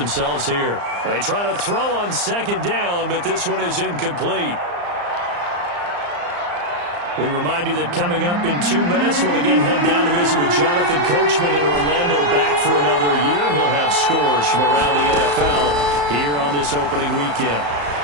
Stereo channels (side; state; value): left; late; 34 ms